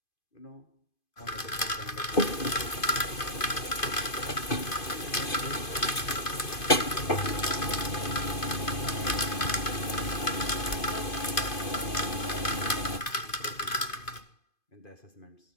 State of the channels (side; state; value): right; late; 2.5 ms